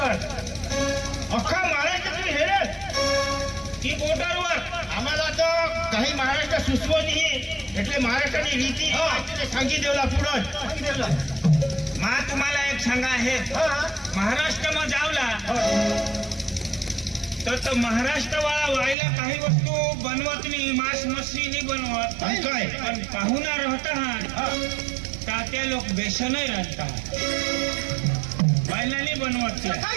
अख्खा महाराष्ट्र तुम्ही हेरत की बॉर्डरवर आम्हाला तर काही महाराष्ट्र सुचवत नाही એટલે महाराष्ट्राची रीती सांगी देवला पुढं मा तुम्हाला एक सांगा आहे महाराष्ट्र में जावला तर महाराष्ट्र वाला व्हायला काही वस्तू बनवत नाही मांस मच्छी नाही बनवत काय पण पाहुणा राहता त्या लोक बेसनही राहतात व्हायला नाही बनवत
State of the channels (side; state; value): left; drops out; at 18.9 s